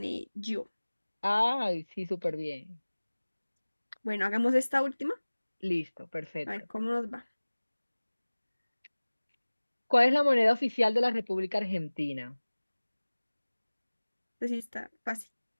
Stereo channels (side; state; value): both; inverted; correlation -1.00